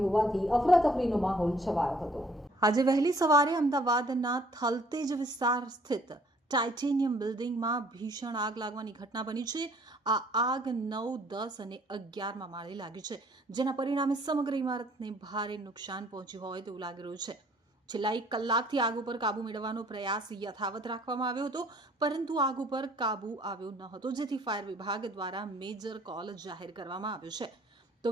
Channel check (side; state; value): both; normal; correlation 0.59